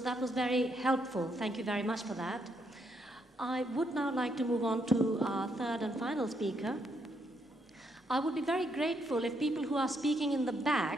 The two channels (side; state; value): both; normal; correlation 0.76